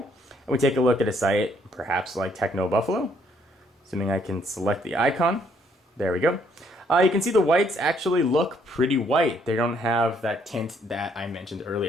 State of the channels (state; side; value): normal; both; correlation 0.67